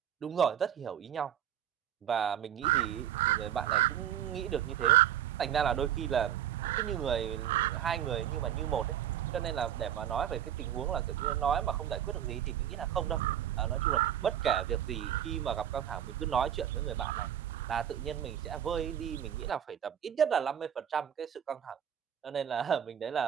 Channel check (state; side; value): quieter; left; 10.2 dB